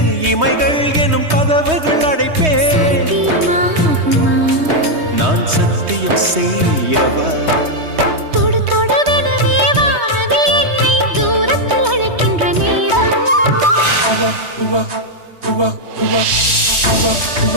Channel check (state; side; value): late; left; 3.2 ms